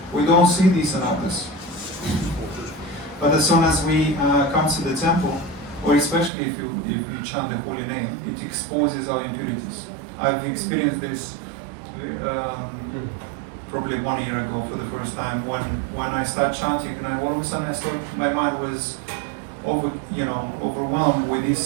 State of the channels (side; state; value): left; drops out; at 6.3 s